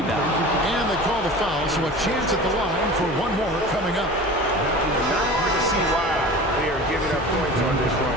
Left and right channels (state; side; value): noise; left; hum, 16 dB below the sound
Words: And they call the foul, so a chance at the line for one more coming up. Not hard to see why they are giving up points on this